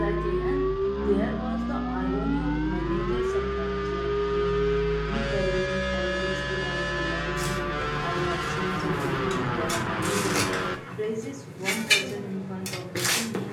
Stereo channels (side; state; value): both; identical; correlation 1.00